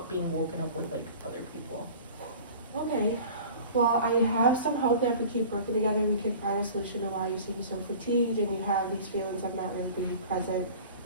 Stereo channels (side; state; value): both; inverted; correlation -0.42